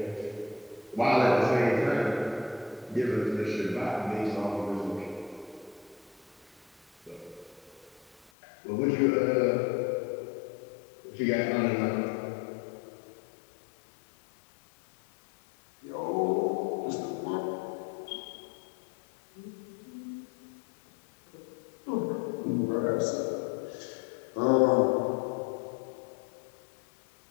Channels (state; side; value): drops out; right; at 8.3 s